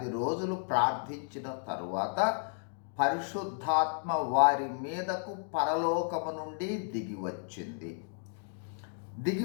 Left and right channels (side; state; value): right; silent; 56 dB below the other